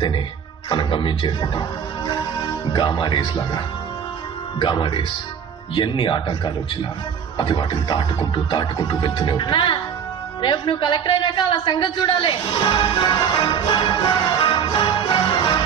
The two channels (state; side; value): quieter; left; 7.5 dB